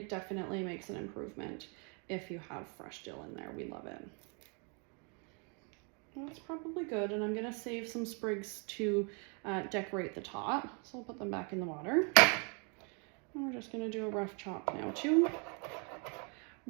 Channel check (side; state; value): left; quieter; 36.1 dB